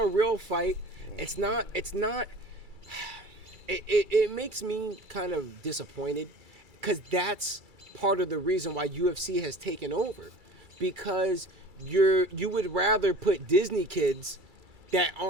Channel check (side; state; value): left; late; 2.3 ms